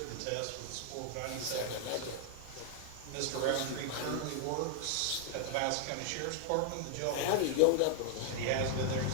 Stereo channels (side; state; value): both; different; correlation 0.00